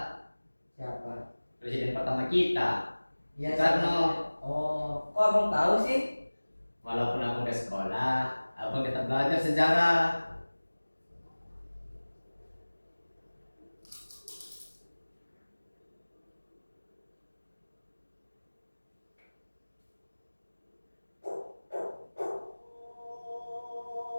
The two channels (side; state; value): both; inverted; correlation -1.00